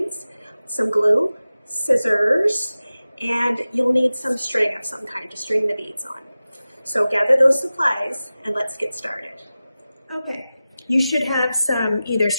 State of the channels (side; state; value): both; inverted; correlation -0.95